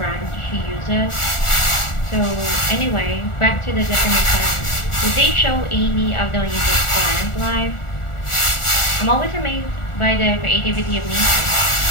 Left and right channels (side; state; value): right; late; 1.4 ms